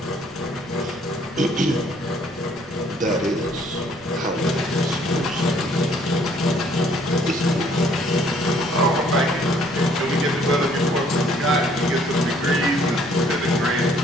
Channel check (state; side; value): noise; right; rumble, 27 dB below the sound